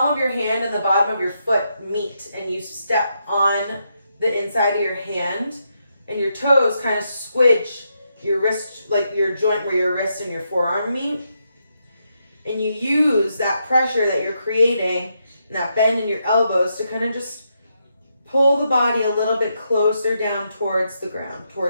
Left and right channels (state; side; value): inverted; both; correlation -0.81